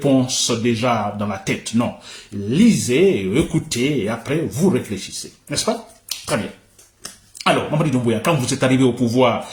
déjà dans la tête. Non. Lisez, écoutez et après, vous réfléchissez. N'est-ce pas? Très bien. Alors, Mamadi Doumbouya, quand vous êtes arrivé au pouvoir,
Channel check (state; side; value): identical; both; correlation 1.00